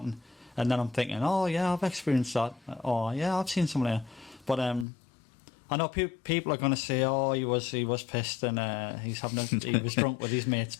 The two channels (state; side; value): drops out; right; at 4.9 s